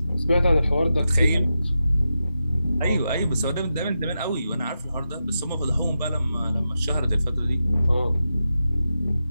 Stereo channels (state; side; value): inverted; both; correlation -0.89